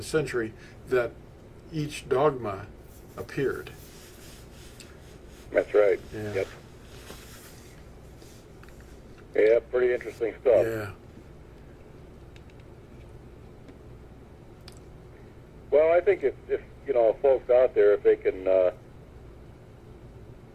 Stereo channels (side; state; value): both; identical; correlation 1.00